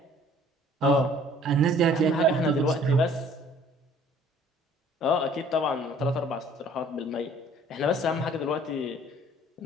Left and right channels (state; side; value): normal; both; correlation 0.54